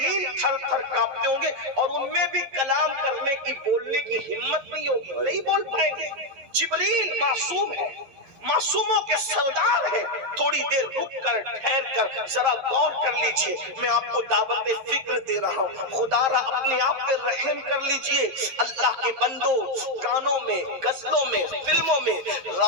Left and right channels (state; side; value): late; left; 11 ms